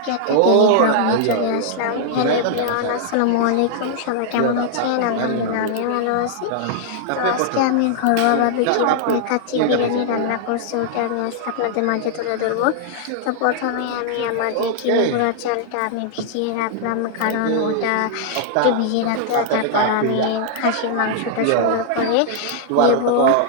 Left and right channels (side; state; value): both; different; correlation -0.01